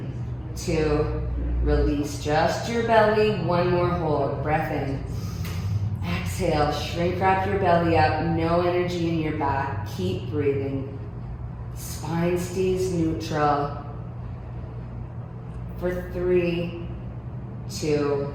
2, release just your belly. One more hold. Breath in. Exhale, shrink wrap your belly up. No energy in your back. Keep breathing. Spine stays neutral. For 3, 2,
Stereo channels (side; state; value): both; identical; correlation 1.00